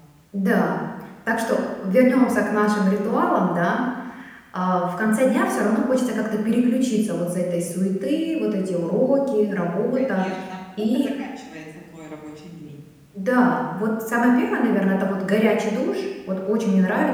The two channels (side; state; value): both; identical; correlation 1.00